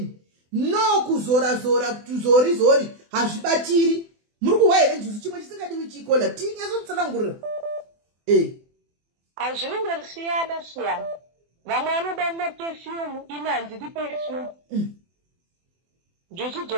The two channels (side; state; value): left; late; 24 ms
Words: no kuzora tuzorizori hazvibatiri muri kuhwa here njuzu chimwe chisingadiwi chikola tinyasotsanangurira hazvinenge siyana vamwe vanoda maperfume ine handidi perfume njuzu